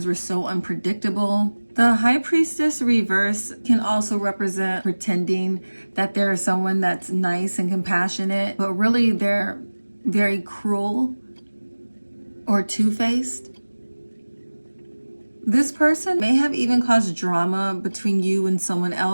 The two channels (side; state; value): both; inverted; correlation -1.00